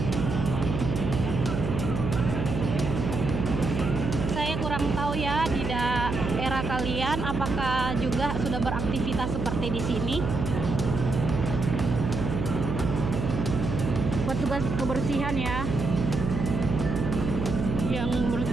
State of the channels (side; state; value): right; noise; hum, 3 dB below the sound